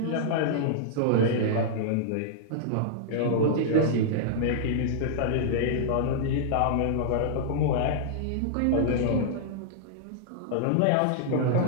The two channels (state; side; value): different; both; correlation -0.02